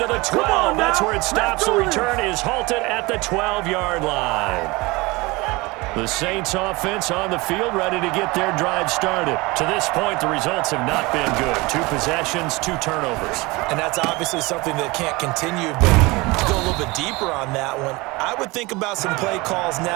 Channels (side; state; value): left; quieter; 23.5 dB